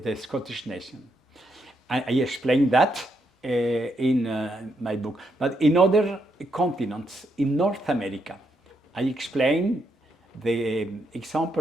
Scottish nation. I explained that in my book. But in other continents, in North America, I explained the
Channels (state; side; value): normal; both; correlation 0.79